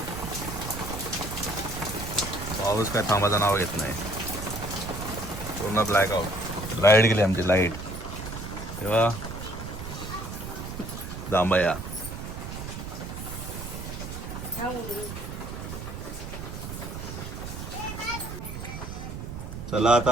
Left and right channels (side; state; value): right; noise; rumble, 8 dB below the sound